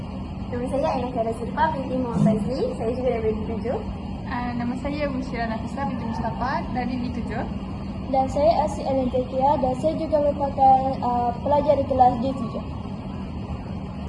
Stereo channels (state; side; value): identical; both; correlation 1.00